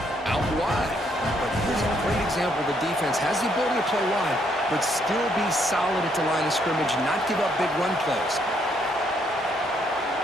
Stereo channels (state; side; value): normal; both; correlation 0.72